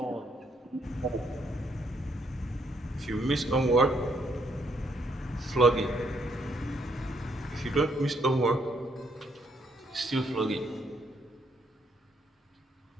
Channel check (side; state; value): both; normal; correlation 0.71